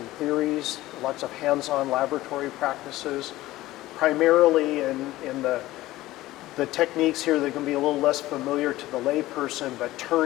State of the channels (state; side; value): quieter; right; 16.8 dB